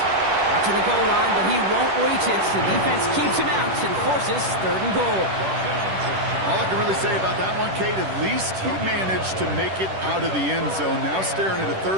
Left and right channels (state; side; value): late; left; 10 ms